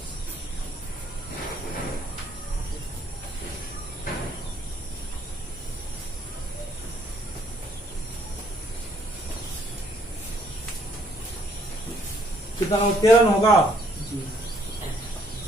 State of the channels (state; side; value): normal; both; correlation 0.66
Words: कितना 13 होगा।